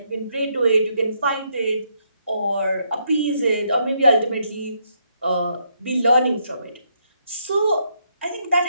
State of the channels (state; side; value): inverted; both; correlation -0.75